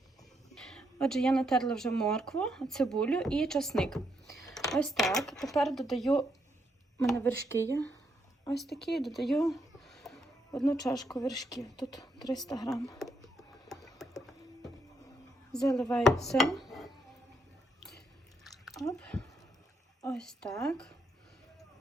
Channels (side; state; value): both; normal; correlation 0.77